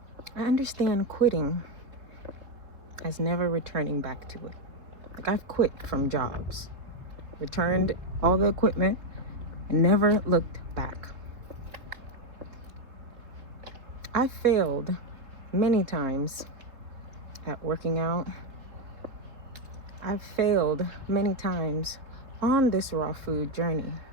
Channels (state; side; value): late; left; 4.0 ms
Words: I understand quitting as never returning back to it. Like, I've quit from jobs, returned all the equipment, and never looked back. I failed many times at working out. I've failed many times on this raw food journey,